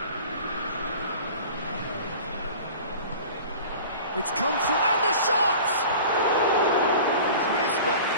It's come through, and the shot! He's missed, but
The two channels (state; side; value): inverted; both; correlation -0.41